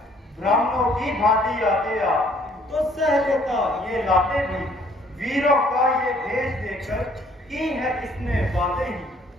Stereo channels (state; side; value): normal; both; correlation 0.61